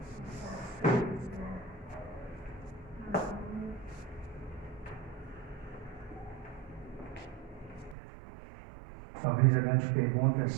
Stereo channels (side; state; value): left; drops out; at 8.0 s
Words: Talvez a grande pergunta